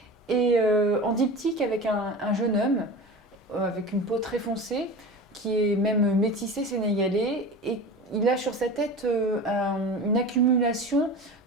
et en diptyque avec un jeune homme avec une peau très foncée, qui est même métissé sénégalais, et il a sur sa tête une accumulation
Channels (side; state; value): both; normal; correlation 0.32